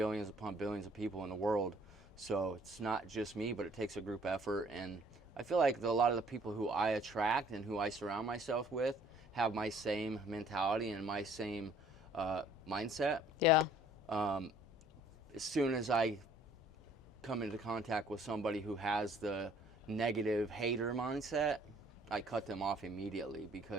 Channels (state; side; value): normal; both; correlation 0.57